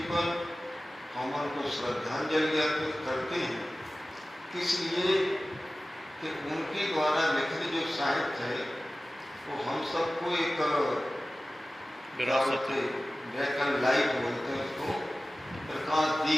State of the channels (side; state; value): both; normal; correlation 0.96